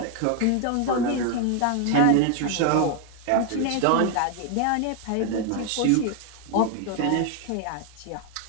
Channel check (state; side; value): different; both; correlation 0.01